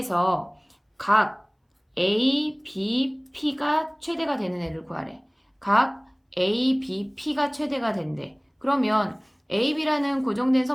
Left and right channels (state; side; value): identical; both; correlation 1.00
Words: 각 ABP가 최대가 되는 애를 구하래. 각 A, B, P가 최대가 된대. 그러면 A, B라는 고정된